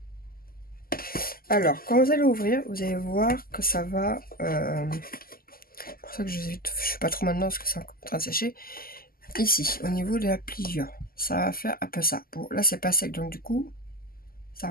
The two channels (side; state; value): right; late; 0.42 ms